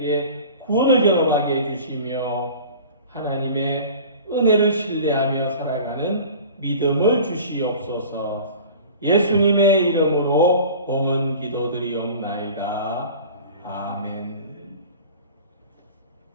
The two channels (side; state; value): both; inverted; correlation -0.41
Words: 구원을 경험하게 해주시며 하나님의 은혜를 신뢰하며 살아가는 믿음을 주시옵소서. 예수님의 이름으로 봉헌 기도드리옵나이다. 아멘.